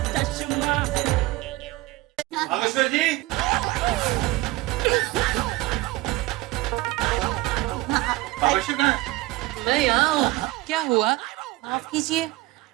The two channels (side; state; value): left; quieter; 19.0 dB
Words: बागेश्वर जी, बागेश्वर कहाँ है? मैं यहाँ हूँ। क्या हुआ? माफ कीजिए,